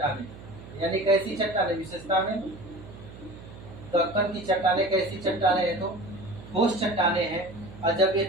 यानी कैसी चट्टानें, विशेषता में दक्कन की चट्टानें कैसी चट्टानें हैं, तो ठोस चट्टानें हैं। और जब ये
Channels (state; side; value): noise; right; hum, 16 dB below the sound